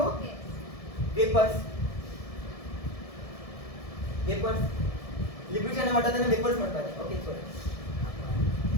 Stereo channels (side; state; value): right; late; 1.7 ms